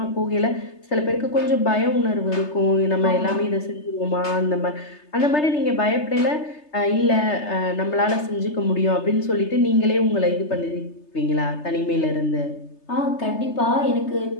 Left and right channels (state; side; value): late; right; 3.3 ms